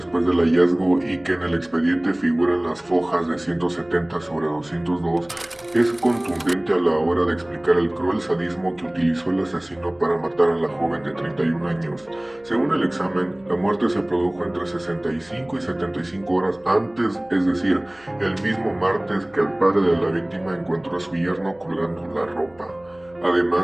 del hallazgo y que en el expediente figuran las fojas de 170 sobre 202, es contundente a la hora de explicar el cruel sadismo que utilizó el asesino para matar a la joven de 31 años. Según el examen, la muerte se produjo entre 65 y 75 horas antes, es decir, el mismo martes que el padre de la víctima encontró a su yerno colgando la ropa.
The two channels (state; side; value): noise; right; hum, 29 dB below the sound